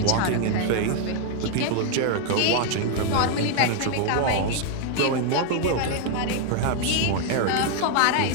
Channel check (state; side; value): different; both; correlation 0.00